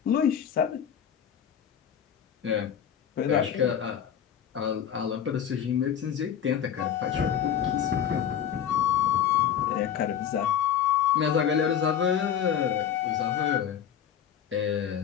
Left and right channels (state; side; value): quieter; right; 9.0 dB